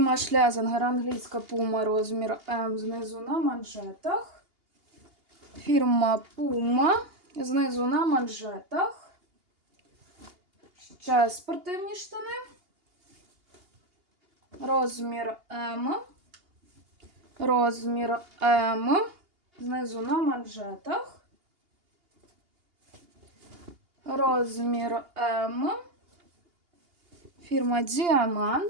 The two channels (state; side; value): late; left; 2.8 ms